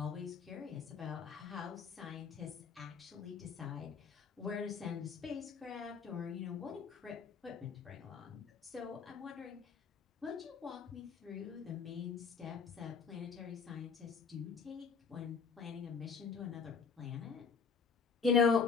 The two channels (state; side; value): quieter; right; 5.7 dB